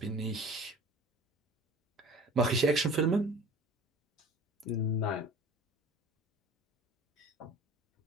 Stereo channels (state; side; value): normal; both; correlation 0.42